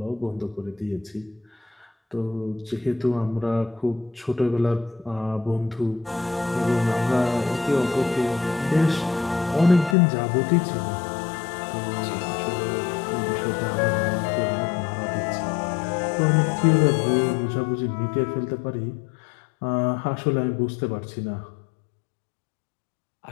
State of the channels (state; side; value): drops out; right; at 10.0 s